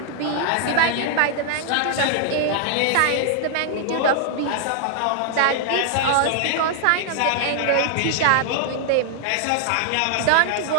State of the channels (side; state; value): both; different; correlation 0.00